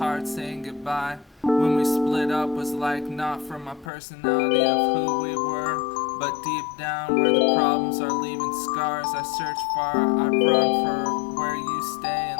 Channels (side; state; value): right; drops out; at 3.9 s